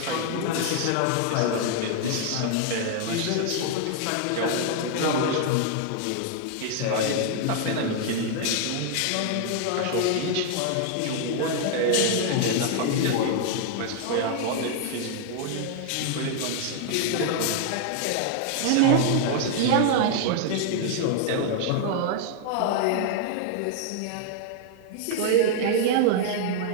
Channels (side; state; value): both; different; correlation 0.00